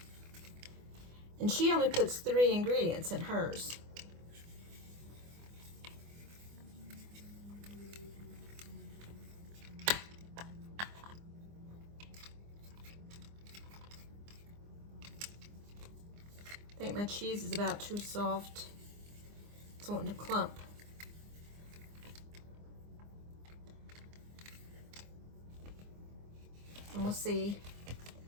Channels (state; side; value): late; left; 24 ms